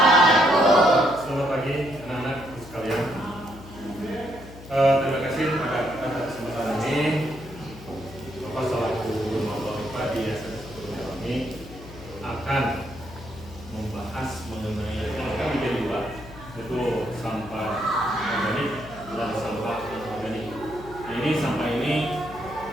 Selamat pagi anak-anak sekalian. Terima kasih pada kesempatan ini. Bapak selaku guru Mapalipa di SMP 1 kami akan membahas mengenai kami menjadi dua, yaitu sampah organik dan sampah anorganik. Nah, ini sampah ini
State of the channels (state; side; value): noise; left; hum, 16 dB below the sound